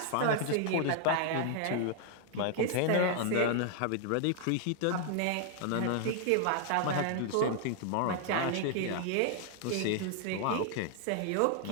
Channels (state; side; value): different; both; correlation 0.00